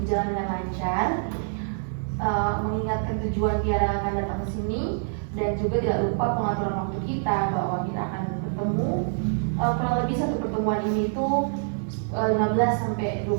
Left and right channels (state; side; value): silent; left; 61 dB below the other